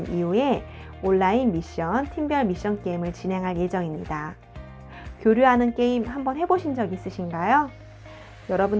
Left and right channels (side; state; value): both; identical; correlation 1.00